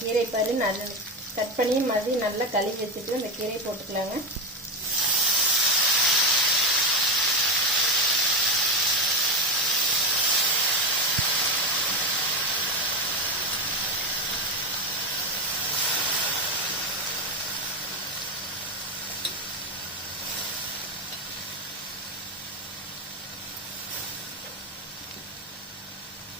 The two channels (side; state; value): both; normal; correlation 0.14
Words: பாரு நல்லா கட் பண்ணி மறுபடியும் நல்லா கழுவி வச்சுட்டு இந்த கீரையை போட்டுக்கலாங்க.